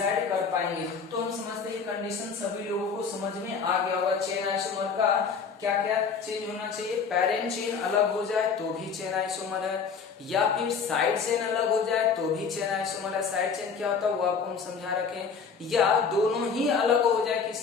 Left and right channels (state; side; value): quieter; right; 5.8 dB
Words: कर पाएंगे। तो हम समझते हैं कंडीशन सभी लोगों को समझ में आ गया होगा। चेन आइसोमर का क्या क्या चेंज होना चाहिए, पेरेंट चेन अलग हो जाए तो भी चेन आइसोमर है, या फिर साइड चेन अलग हो जाए तो भी चेन आइसोमर है। साइड चेन क्या होता है वो आपको हम समझा रखें, या दोनों ही अलग हो जाए